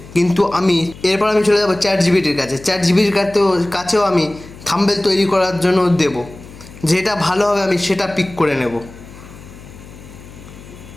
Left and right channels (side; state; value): left; noise; hum, 18 dB below the sound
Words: কিন্তু এরপর আমি চলে যাবো চ্যাটজিপিটির কাছে। চ্যাটজিপিটির কাছেও আমি থাম্বনেল তৈরি করার জন্য দেব, যেটা ভালো হবে আমি সেটা পিক করে নেব।